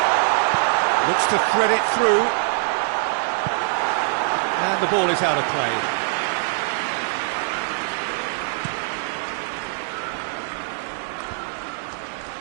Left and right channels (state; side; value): silent; left; digital silence